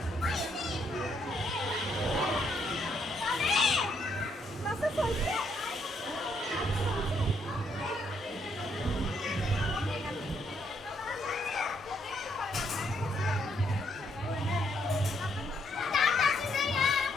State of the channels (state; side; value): normal; both; correlation 0.73